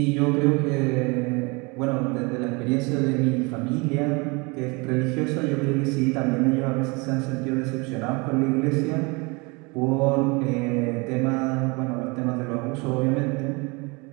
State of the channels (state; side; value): quieter; left; 27.9 dB